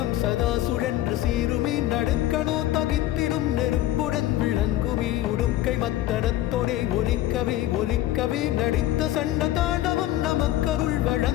சதா சுழன்று சீருமி நடுக்கணோ தகித்திடும் நெருப்புடன் விளங்குமி உடுக்கை மத்தனத்தொடே ஒலிக்கவே ஒலிக்கவே நடித்த சண்ட தாண்டவம் நமக்கருள்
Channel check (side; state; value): right; quieter; 14.3 dB